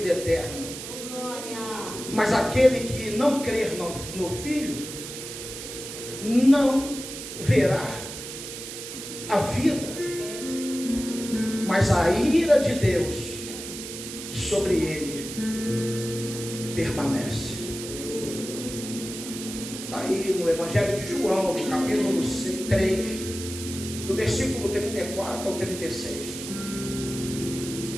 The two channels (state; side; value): noise; right; hiss, 9 dB below the sound